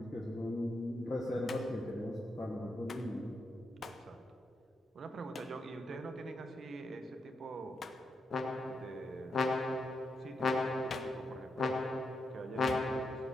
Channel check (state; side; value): normal; both; correlation 0.83